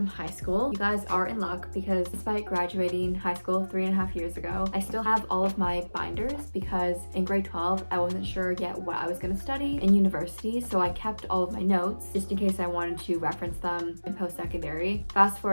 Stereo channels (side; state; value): both; inverted; correlation -1.00